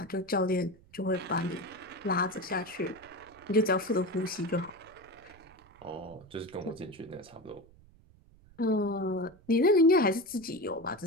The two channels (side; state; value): right; noise; rumble, 26 dB below the sound